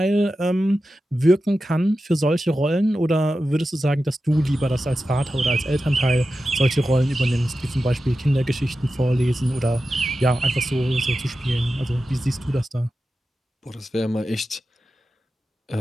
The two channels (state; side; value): normal; both; correlation 0.92